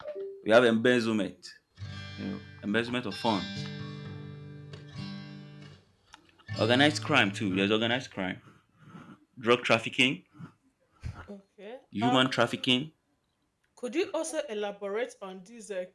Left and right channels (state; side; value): identical; both; correlation 1.00